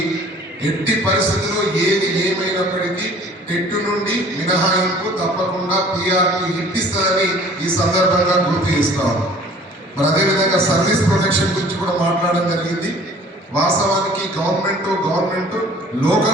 ఎట్టి పరిస్థితుల్లో ఏది ఏమైనప్పటికీ టెట్టు నుండి మినహాయింపు తప్పకుండా పిఆర్పి ఇప్పిస్తుందని ఈ సందర్భంగా గుర్తు చేస్తాం. మరి అదేవిధంగా సర్వీస్ ప్రొటెక్షన్ గురించి కూడా మాట్లాడడం జరిగింది. వాస్తవానికి government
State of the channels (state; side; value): normal; both; correlation 0.50